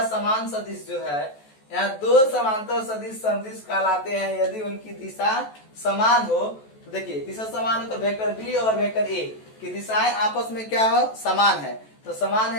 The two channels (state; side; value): late; right; 14 ms